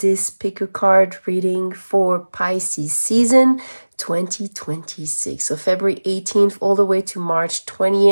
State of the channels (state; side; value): inverted; both; correlation -1.00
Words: pick a card reading for Pisces season 2026. So February 18th all the way to March